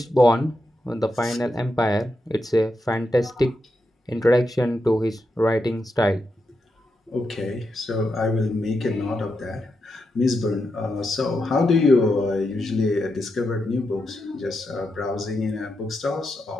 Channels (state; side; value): normal; both; correlation 0.85